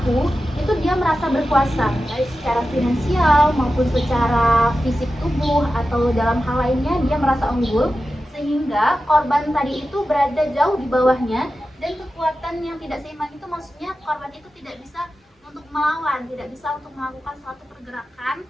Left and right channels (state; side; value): normal; both; correlation 0.92